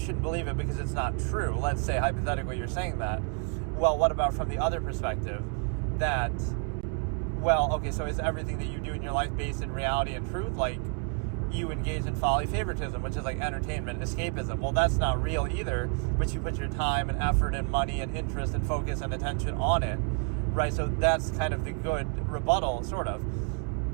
believe it because it's not true. Let's say hypothetically you're saying that. Well, what about from the other perspective that, well, okay, so is everything that you do in your life based in reality and truth? Like, you engage in folly favoritism, which is like entertainment, escapism. Well, that's not real either, but you put your time and effort and money and interest and focus and attention on it, right? So that's kind of the good rebuttal, sort of.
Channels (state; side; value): quieter; left; 38.7 dB